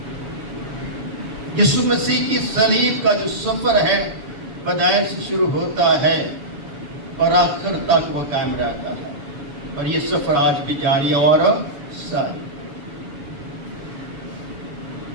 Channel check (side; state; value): left; late; 7.1 ms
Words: یسوع مسیح کی صلیب کا جو سفر ہے بداعث سے شروع ہوتا ہے اور آخر تک وہ قائم رہتا ہے، اور یہ سفر آج بھی جاری اور ساری.